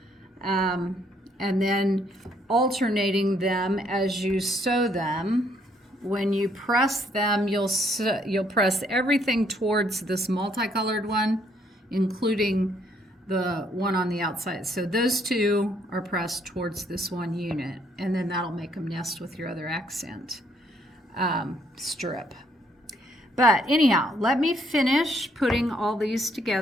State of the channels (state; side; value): normal; both; correlation 0.69